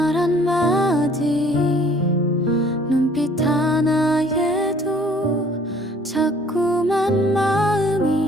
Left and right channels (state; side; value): normal; both; correlation 0.57